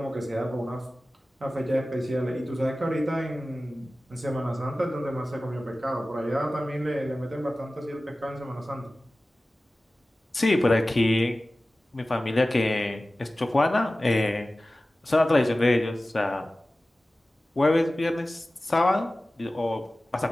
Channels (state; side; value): normal; both; correlation 0.96